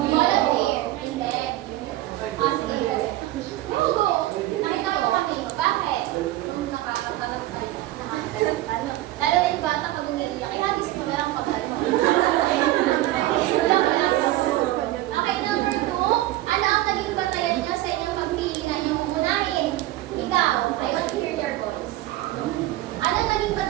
Volunteer. Hindi. Sige. Go. Nakita ko kami. Bakit? Nakakatanong tayo. Ano? Lalo na yung bata pag umiiyak. Ihagis ko na lang pag ano. Okay, number 2. Ano ang naging batayan niyo sa inyong pagpili na niyong uunahin? Ikaw, I want to hear your voice. Ano ang naging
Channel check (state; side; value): quieter; left; 16.1 dB